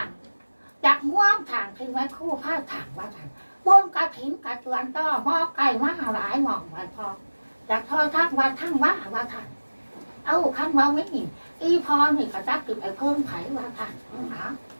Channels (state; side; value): inverted; both; correlation -1.00